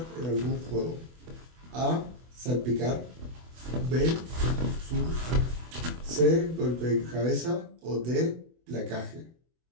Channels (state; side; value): late; left; 24 ms